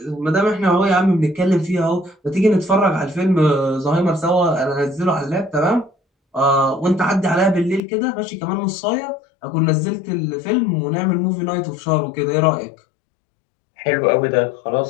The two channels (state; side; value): drops out; right; at 7.8 s